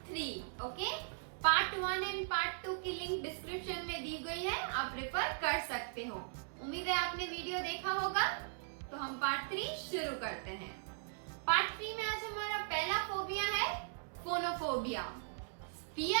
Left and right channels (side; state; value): left; silent; digital silence